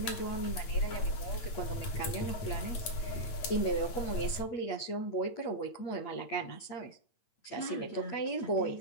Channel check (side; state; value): right; late; 8.8 ms